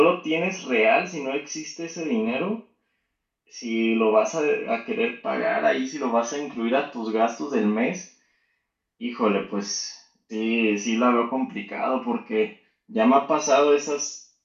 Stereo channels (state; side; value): identical; both; correlation 1.00